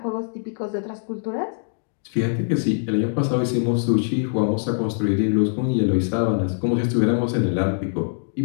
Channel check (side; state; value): right; silent; digital silence